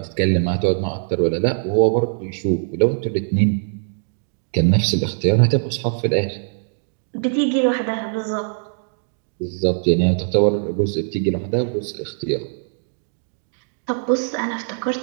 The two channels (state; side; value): silent; left; digital silence